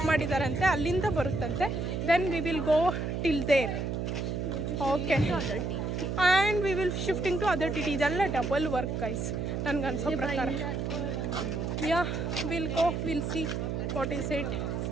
ಮಾಡಿದಾರಂತೆ, ಅಲ್ಲಿಂದ ಬರುತ್ತಂತೆ. Then we will go till there. Okay and we will shifting to other T T. ಇದೆಲ್ಲ ಡಬಲ್ ವರ್ಕ್ ಗೈಸ್ ನನಗೆ ಅನ್ಸೋ ಪ್ರಕಾರ. Yeah will go, will see what is it.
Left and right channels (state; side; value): noise; right; hum, 2 dB below the sound